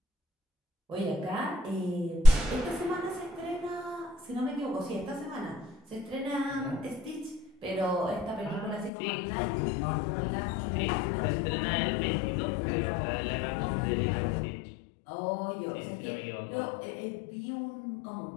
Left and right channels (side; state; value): right; drops out; at 8.9 s